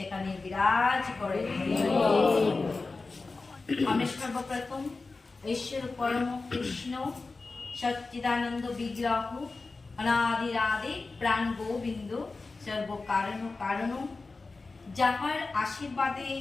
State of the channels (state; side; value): quieter; right; 3.8 dB